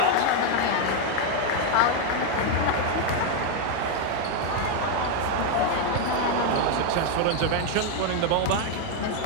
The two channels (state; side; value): different; both; correlation 0.01